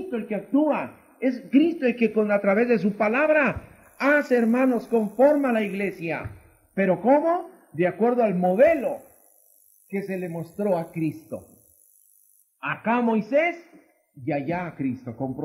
el que actúa. Es Cristo el que a través de su palabra hace, hermanos, conforma la iglesia. ¿Pero cómo? De acuerdo al modelo que se le mostró a Cristo. Acá a Moisés y allá a Cristo,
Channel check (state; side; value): identical; both; correlation 1.00